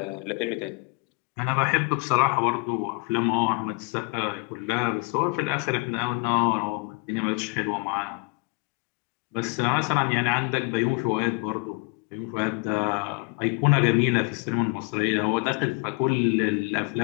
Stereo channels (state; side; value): quieter; right; 32.5 dB